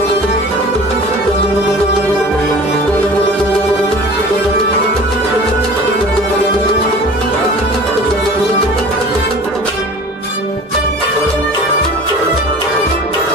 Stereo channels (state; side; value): normal; both; correlation 0.42